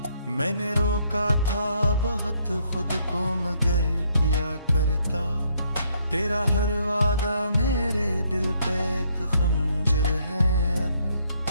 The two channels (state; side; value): inverted; both; correlation -0.70